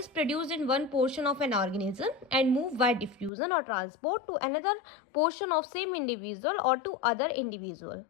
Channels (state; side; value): drops out; right; at 3.3 s